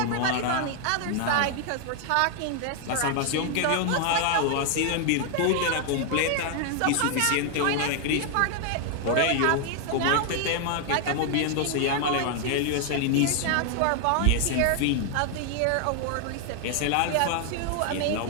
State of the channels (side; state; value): both; different; correlation 0.00